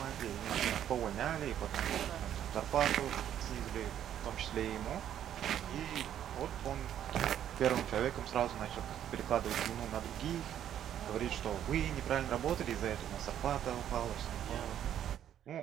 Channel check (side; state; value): left; quieter; 10.4 dB